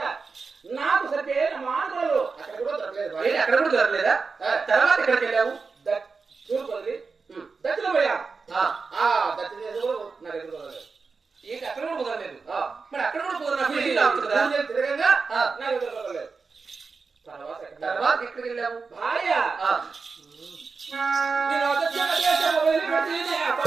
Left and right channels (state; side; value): quieter; left; 4.7 dB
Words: నాకు సరిపోయిన మాటలు అక్కడ కూడా దొరకలేదు. ఏంటి అక్కడ కూడా దొరకలేదా? తర్వాత ఎక్కడికి వెళ్ళావు? తూర్పు వదిలి ఉమ్, దక్షిణ పోయారు. ఆ, ఆ దక్షిణ దేశం కూడా నాకు ఎదురు దొరకలేదు. ఏంటి అక్కడ కూడా కుదరలేదు? ఆ, మరి అక్కడ కూడా కుదరనప్పుడు ఇది అవుతుందా? నేను తిరగంగా ఆ. నాకు ఎదురు దొరకలేదు. తర్వాత ఎక్కడ? తర్వాత ఎక్కడికి వెళ్ళావు? భార్య ఆ, నేను దక్షిణ దేశం వదిలిపెట్టి